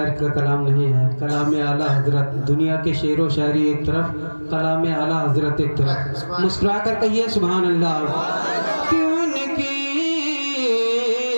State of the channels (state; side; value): inverted; both; correlation -1.00